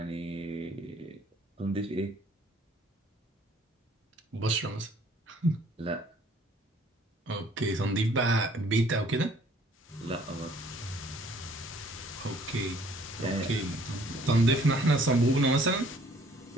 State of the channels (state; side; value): normal; both; correlation 0.58